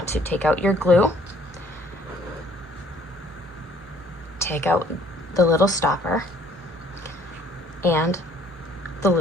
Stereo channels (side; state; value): both; normal; correlation 0.60